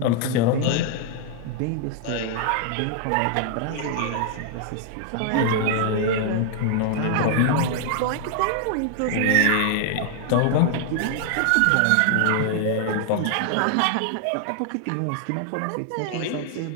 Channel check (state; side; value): different; both; correlation 0.00